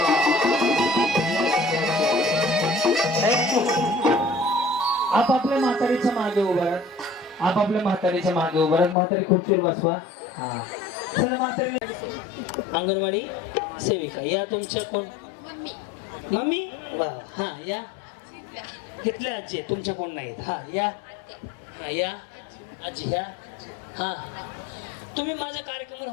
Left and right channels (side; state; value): right; drops out; at 9.0 s